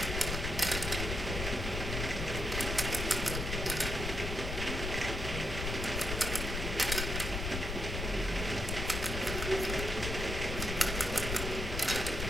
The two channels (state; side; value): noise; left; rumble, 3 dB below the sound